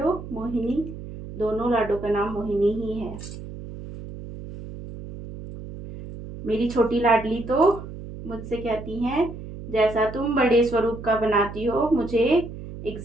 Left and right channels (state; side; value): noise; right; hum, 12 dB below the sound